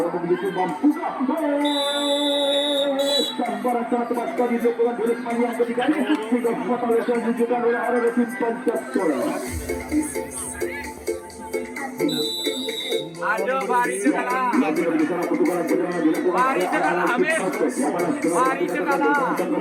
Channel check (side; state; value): both; identical; correlation 1.00